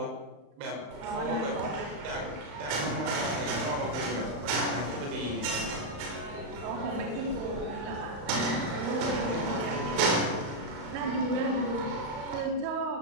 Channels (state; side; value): late; left; 35 ms